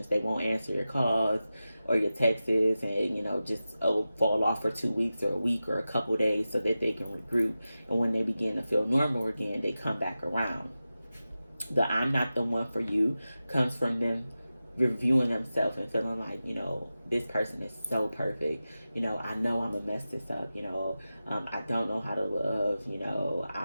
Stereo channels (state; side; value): inverted; both; correlation -0.94